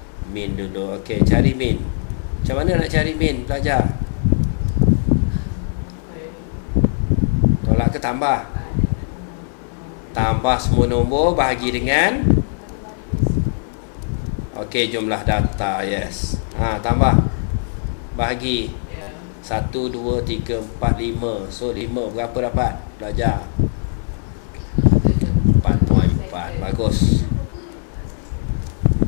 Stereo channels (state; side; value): silent; right; 65 dB below the other